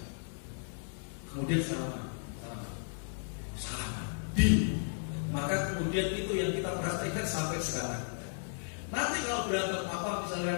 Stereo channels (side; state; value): right; silent; 55 dB below the other